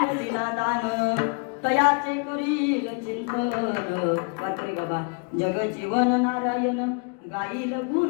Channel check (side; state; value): right; quieter; 37.4 dB